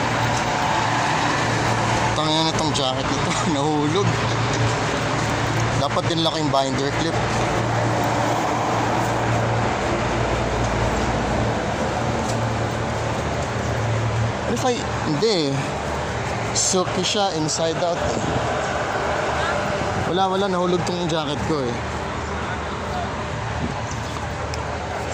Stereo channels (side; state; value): both; identical; correlation 1.00